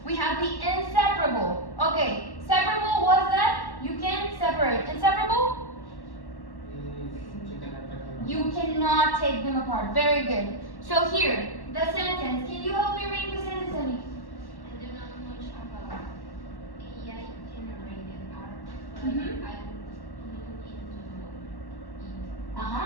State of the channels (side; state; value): right; late; 1.1 ms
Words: We have the inseparable. Okay, separable was that you can separate. Inseparable? You cannot take them apart. Very good. So here, the sentence. Can you help me read the sentence, Annie? I do not know much about AI generated art, but Mhm. I will look into it.